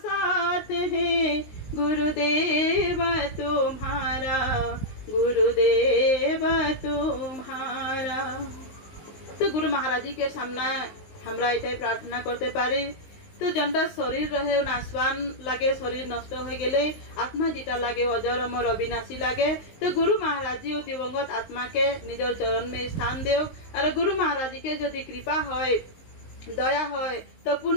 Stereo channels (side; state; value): right; late; 19 ms